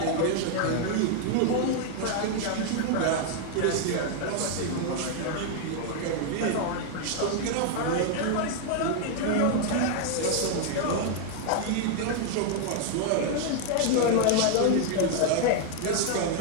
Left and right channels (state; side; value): different; both; correlation 0.00